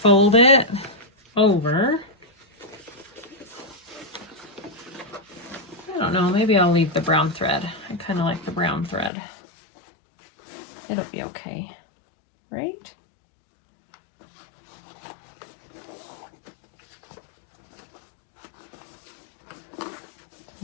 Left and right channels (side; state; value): right; drops out; at 9.1 s